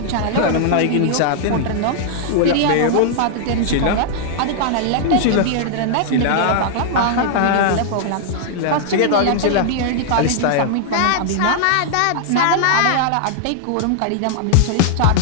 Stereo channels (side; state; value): both; different; correlation -0.01